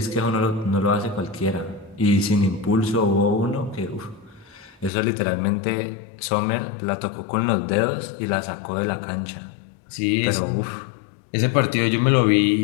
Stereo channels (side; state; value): right; drops out; at 4.9 s